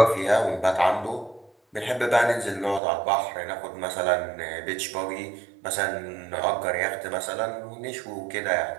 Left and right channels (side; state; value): left; drops out; at 2.8 s